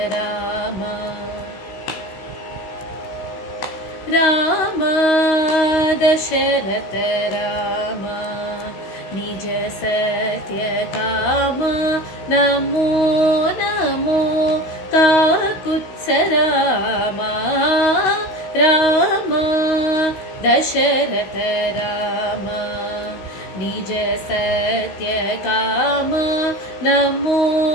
राम राम दशरथ राम निज सत्य काम नमो नमो काकुत्स राम राम दशरथ राम निज सत्य काम नमो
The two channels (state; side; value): late; right; 16 ms